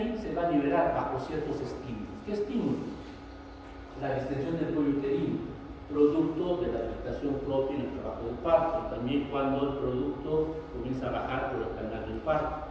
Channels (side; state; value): both; identical; correlation 1.00